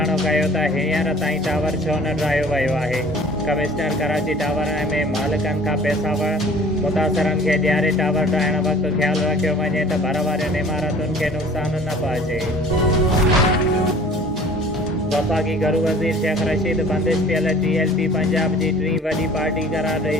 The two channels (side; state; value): both; normal; correlation 0.48